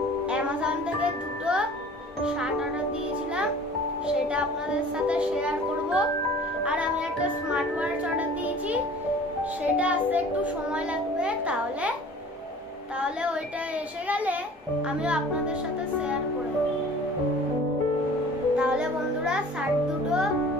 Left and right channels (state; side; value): normal; both; correlation 0.46